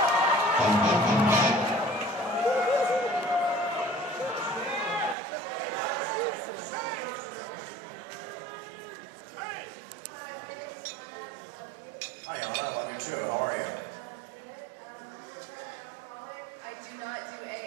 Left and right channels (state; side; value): drops out; left; at 5.2 s